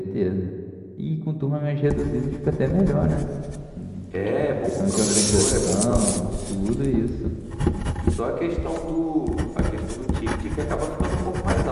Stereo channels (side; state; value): both; identical; correlation 1.00